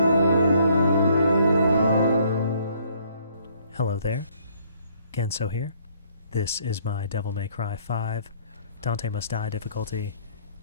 there, Genso here. This is my Devil May Cry 5 Dante Must Die difficulty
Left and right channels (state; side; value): inverted; both; correlation -0.63